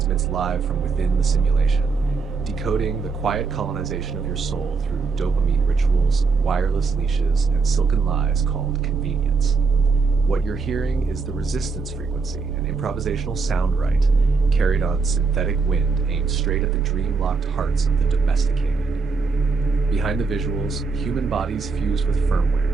live from within the simulation, decoding the quiet colonization of your soul through dopamine rituals, wireless leashes, and silken lies called convenience. What you're hearing is the resistance frequency, an improvisational sound right, carried on synthetic wind aimed straight at the dream-locked hearts of the domesticated. Behind the visuals, human bodies fused with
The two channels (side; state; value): left; quieter; 4.6 dB